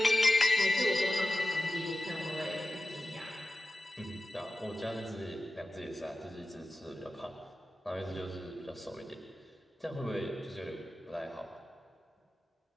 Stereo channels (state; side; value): normal; both; correlation 0.94